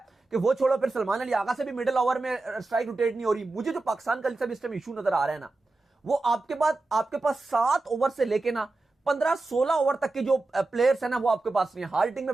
कि वो छोड़ो, फिर सलमान अली आगा से भी मिडिल ओवर में स्ट्राइक रोटेट नहीं हो रही। मुझे जो पाकिस्तान का इस टाइम इशू नजर आ रहा है ना, वो आपके पास 7 ओवर से लेके ना 15-16 ओवर तक के जो प्लेयर्स है ना, वो आपके पास नहीं है। हार्ड हिटिंग में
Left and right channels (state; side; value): quieter; left; 3.2 dB